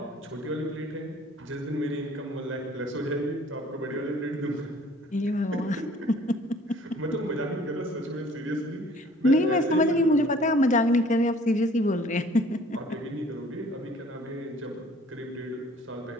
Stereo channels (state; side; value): normal; both; correlation 0.54